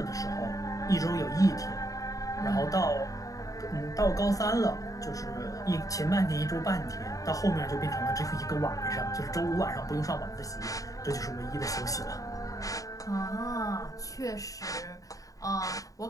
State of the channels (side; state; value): right; late; 0.16 ms